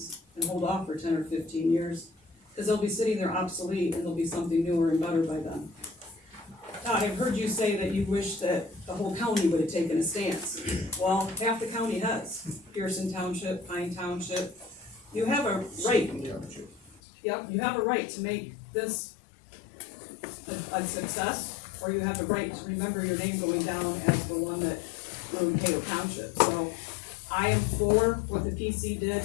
and hold off for 10 or 15 years? Because they'll be sitting there obsolete and there'll be something newer and better by then. Todd, I've heard you say that you wish that the whole county would have taken a stance. Well, half the county has. Pearson Township, Pine Township. You have a right. Yep, you have a right to make this a success, or you have the right to remember your name going down as the one that ruined Cato Township. So I am for what the PC did.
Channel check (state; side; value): drops out; right; at 17.0 s